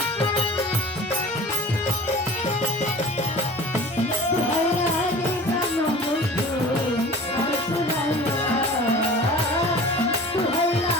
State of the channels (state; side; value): normal; both; correlation 0.40